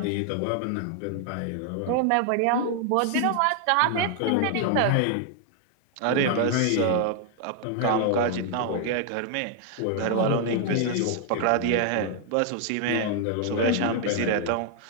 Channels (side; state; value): both; different; correlation 0.00